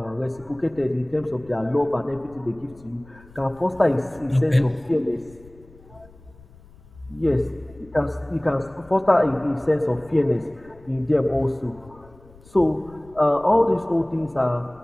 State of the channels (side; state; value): left; noise; rumble, 24 dB below the sound